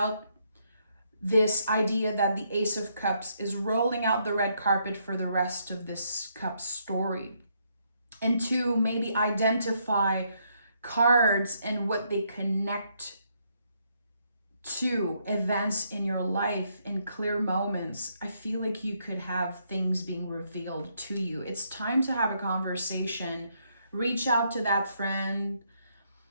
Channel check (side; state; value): both; inverted; correlation -0.74